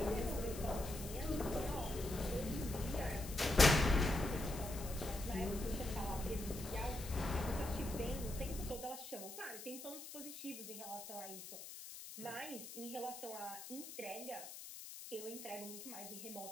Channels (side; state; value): left; noise; hiss, 11 dB below the sound